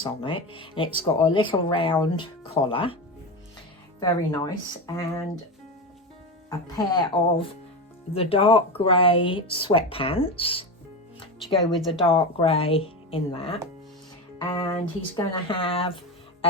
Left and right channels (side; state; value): both; normal; correlation 0.20